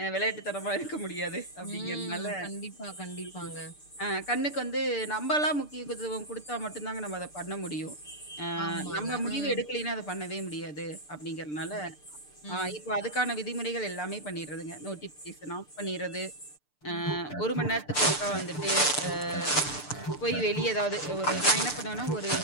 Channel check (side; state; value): right; late; 6.8 ms